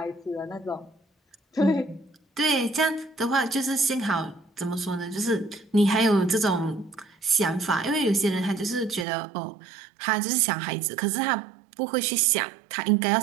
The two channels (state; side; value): drops out; left; at 9.1 s